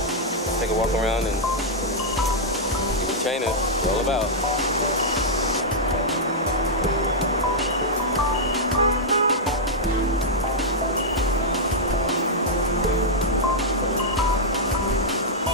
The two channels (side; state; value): both; normal; correlation -0.08